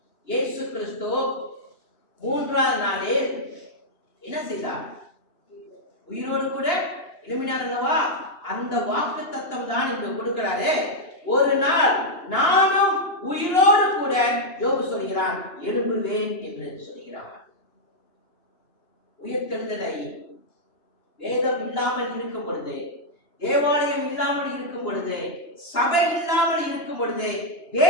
இயேசு கிறிஸ்து 3ஆவது நாளில் என்ன செய்தார்? உயிரோடு கூட எழுப்பினார் அல்லவா? அந்த வாக்கு தத்தம் தான் இங்க கொடுக்கிறாரு. ஒரு நாள் நானும் உயிரோடு கூட யோபு சொல்கிறான் எழும்புவேன் என்று சொல்கிறான். உயிர்த்தெழுதலை வேதம் இல்லாமல் இருக்கும் பொழுது, தேவாலயம் இல்லாமல் இருக்கும் பொழுது, சபை இல்லாமல் இருக்கும் பொழுது,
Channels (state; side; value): late; right; 2.9 ms